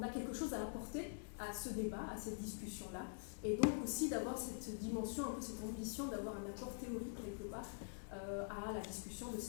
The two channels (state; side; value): silent; right; digital silence